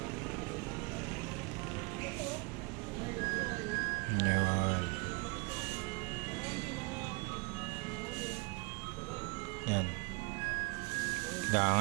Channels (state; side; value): quieter; left; 29.2 dB